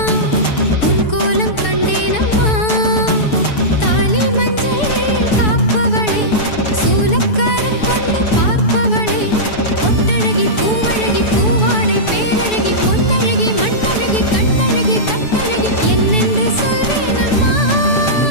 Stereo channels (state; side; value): late; right; 6.9 ms